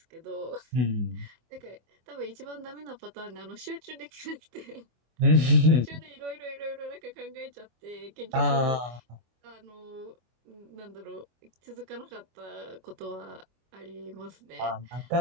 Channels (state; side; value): late; left; 25 ms